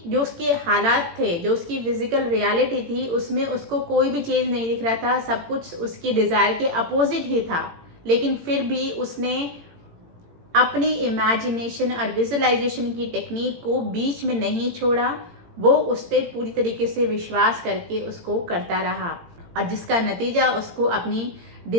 जो उसके हालात थे, जो उसकी फिजिकल रियलिटी थी, उसमें उसको कोई भी चेंज नहीं दिख रहा था। सब कुछ उसकी डिज़ायर के अपोजिट ही था। लेकिन फिर भी उसने अपनी इमेजिनेशन और विजुअलाइजेशन की टेक्निक को बीच में नहीं छोड़ा। वो उस पर पूरी तरीके से विश्वास करके उसको करता रहा और जिसका नतीजा उसको अपनी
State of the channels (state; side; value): late; left; 18 ms